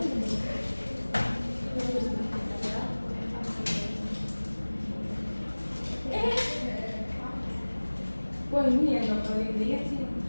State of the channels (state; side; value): inverted; both; correlation -1.00